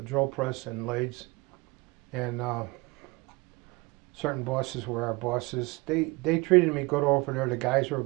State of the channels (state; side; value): quieter; left; 24.9 dB